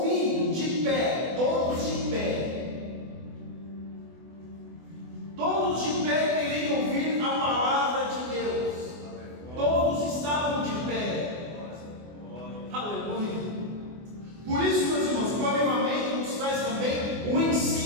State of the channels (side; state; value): left; late; 24 ms